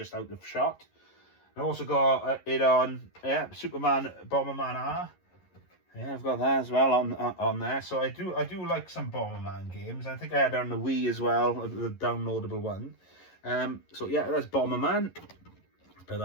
out of shot. I also got it on, Superman Bomberman R. Yeah, I've got that as well on there. So I do like some Bomberman games. I think I had it on the Wii as well, the downloadable one. So yeah, that's Bomberman. Put that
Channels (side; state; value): right; late; 11 ms